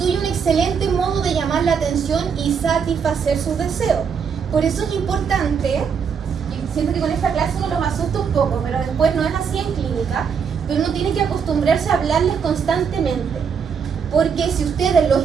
un excelente modo de llamar la atención y satisfacer sus deseos. Por eso es importante, y siento que con esta clase uno los asusta un poco, pero después no es así en clínica, pero uno tiene que acostumbrarse a hablarles constantemente. Porque si ustedes los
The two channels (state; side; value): quieter; left; 6.6 dB